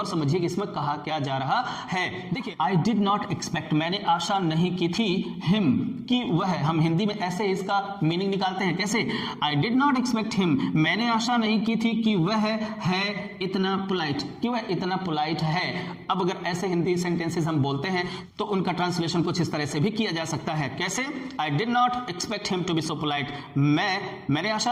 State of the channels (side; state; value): both; identical; correlation 1.00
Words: समझिए कि इसमें कहा क्या जा रहा है। देखिए, आई डिड नॉट एक्सपेक्ट, मैंने आशा नहीं की थी, हिम, कि वह, हम हिंदी में ऐसे इसका मीनिंग निकालते हैं, कैसे, I did not expect him, मैंने आशा नहीं की थी कि वह है इतना पोलाइट, कि वह इतना पोलाइट है। अब अगर ऐसे हिंदी सेंटेंसेस हम बोलते हैं तो उनका ट्रांसलेशन कुछ इस तरह से भी किया जा सकता है, कैसे, I did not expect him to be so polite, मैंने आशा